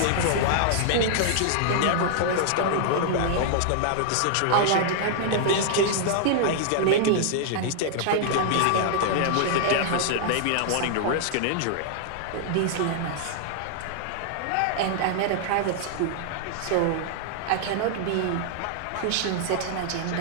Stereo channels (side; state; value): both; different; correlation -0.01